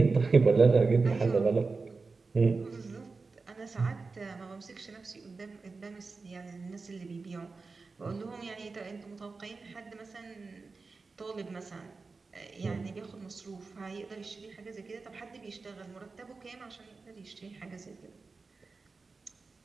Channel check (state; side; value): quieter; left; 4.1 dB